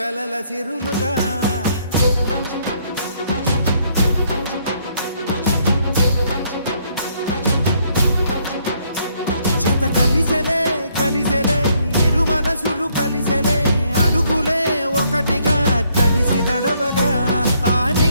సిరులుగా జత కలిసెలే కలిసెలే ఇరు మనసులు కలిసెలే అడుగులే ఒకటిగా కలిసి నడవగా ఆ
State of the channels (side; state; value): both; inverted; correlation -0.69